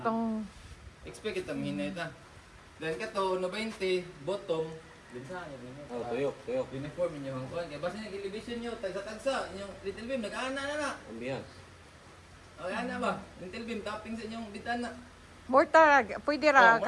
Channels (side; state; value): both; identical; correlation 1.00